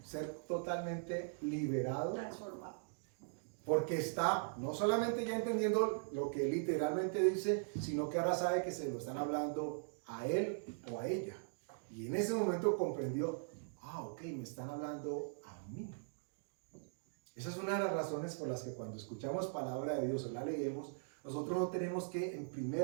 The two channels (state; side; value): silent; left; digital silence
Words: ser totalmente liberado, porque está no solamente ya entendiendo lo que literalmente dice, sino que ahora sabe que se lo están hablando a él o a ella. Y en ese momento comprendió, ok, me están hablando a mí. Esa es una de las razones por las que cuando escuchamos palabra de Dios o la leemos, nosotros no tenemos que en